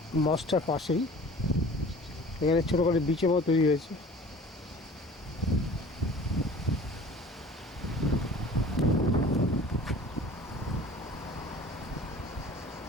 মস্কটার পাশেই এখানে ছোটো করে বিচের মতো তৈরি হয়েছে।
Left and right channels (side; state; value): both; normal; correlation 0.45